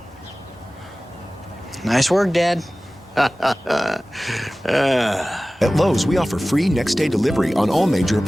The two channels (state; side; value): normal; both; correlation 0.97